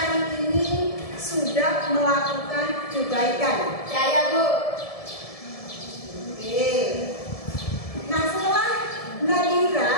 ini sudah sudah melakukan kebaikan? Saya, Bu. Oke. Nah, setelah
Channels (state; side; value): late; right; 1.7 ms